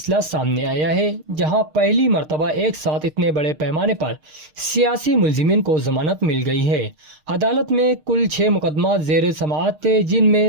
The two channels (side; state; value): left; late; 6.5 ms